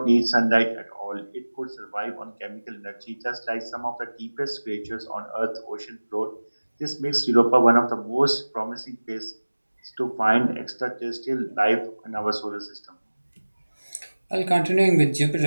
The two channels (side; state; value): both; inverted; correlation -1.00